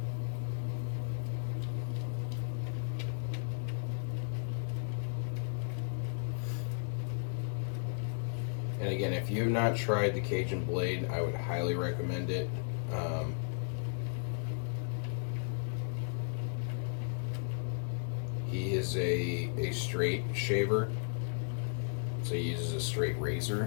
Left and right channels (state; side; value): silent; right; digital silence